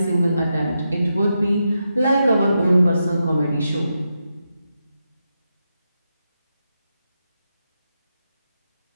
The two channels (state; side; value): inverted; both; correlation -0.86